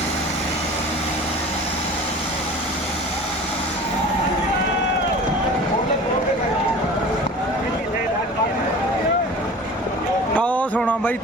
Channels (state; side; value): normal; both; correlation 0.40